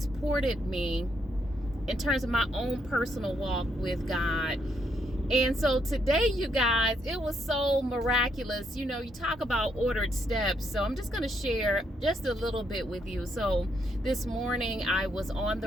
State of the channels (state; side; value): normal; both; correlation 0.75